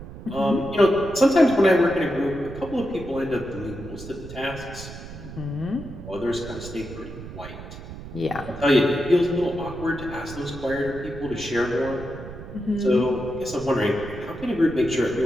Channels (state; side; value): noise; right; rumble, 12 dB below the sound